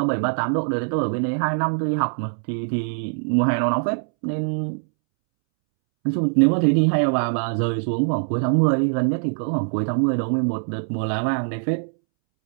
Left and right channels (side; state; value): left; silent; 64 dB below the other